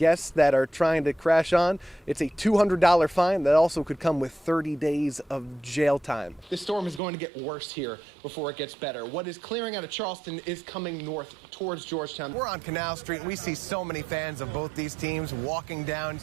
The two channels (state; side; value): drops out; left; at 7.0 s